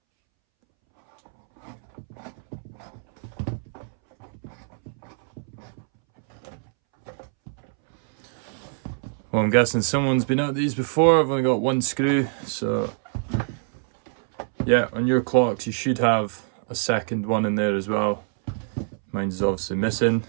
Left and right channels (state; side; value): silent; left; 62 dB below the other